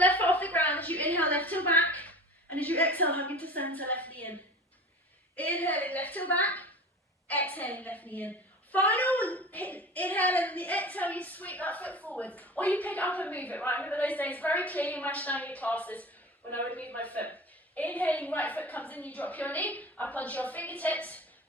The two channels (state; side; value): normal; both; correlation 0.36